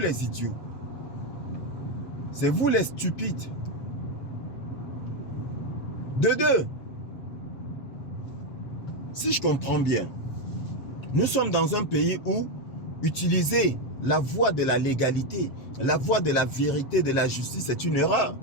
idiots. C'est vous les stupides. De deux, si je comprends bien, nous sommes dans un pays où utiliser la voie de la légalité, la voie de la vérité, de la justice, c'est une erreur.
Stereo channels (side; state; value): right; late; 7.5 ms